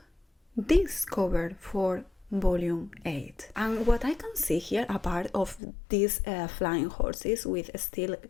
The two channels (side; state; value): right; drops out; at 5.6 s